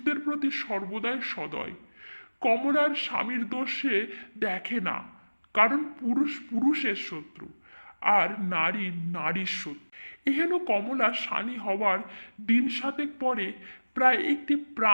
প্রতি সর্বদাই সদয়। কমলার স্বামীর দোষ সে দেখে না, কারণ পুরুষ পুরুষের শত্রু আর নারী নারীর শত্রু। এহেন কমলা শানী হওয়ার দিন সাতেক পরে প্রায় একটি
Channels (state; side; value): inverted; both; correlation -1.00